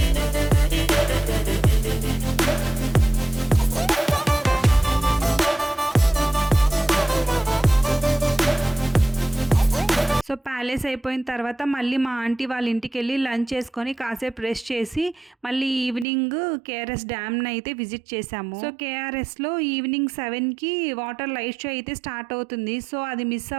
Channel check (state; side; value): drops out; left; at 16.1 s